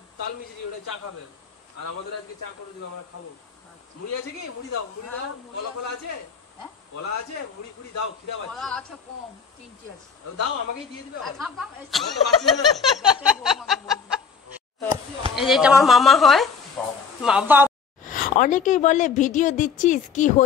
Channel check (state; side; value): quieter; right; 5.9 dB